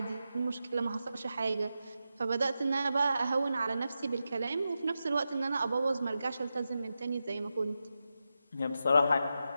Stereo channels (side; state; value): both; inverted; correlation -0.89